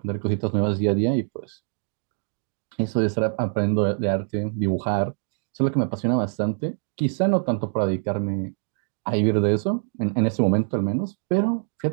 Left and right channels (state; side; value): silent; left; digital silence